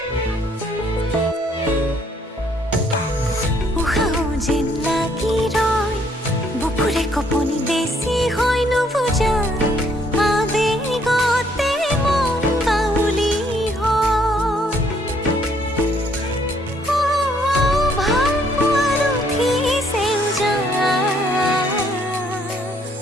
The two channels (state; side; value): normal; both; correlation 0.66